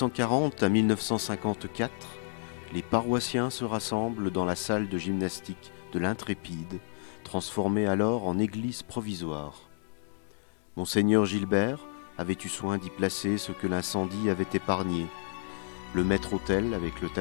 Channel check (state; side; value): silent; right; digital silence